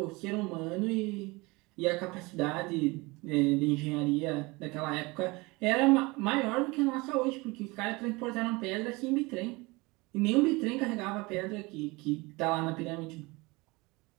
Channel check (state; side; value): quieter; left; 24.3 dB